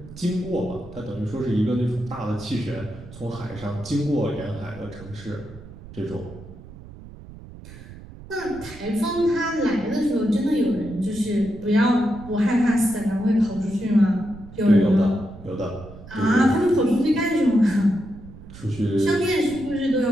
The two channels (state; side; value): noise; right; rumble, 17 dB below the sound